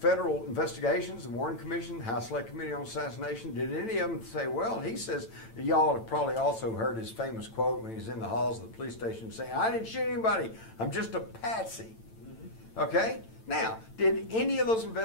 investigations, the Warren Commission, House Select Committee on Assassination, did any of them say, well, he says, y'all have probably also heard his famous quote when he's in the halls of the police station saying, I didn't shoot anybody, I'm just a patsy. Okay, now, did any of those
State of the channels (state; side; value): late; right; 8.9 ms